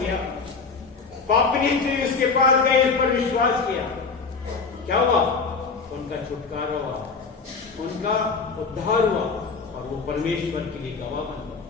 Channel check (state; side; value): quieter; right; 4.8 dB